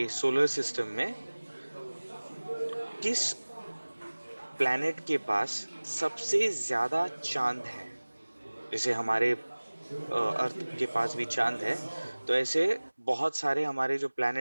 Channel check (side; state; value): both; inverted; correlation -1.00